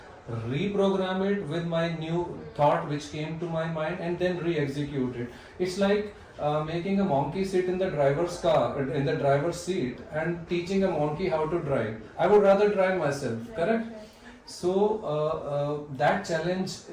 reprogram it with my new thought which came to my mind, and then re-execute it. It's like making a monkey sit in the driver's car, in the driver's seat, and teaching a monkey how to drive. I would rather drive myself, correct? So that challenge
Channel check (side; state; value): both; identical; correlation 1.00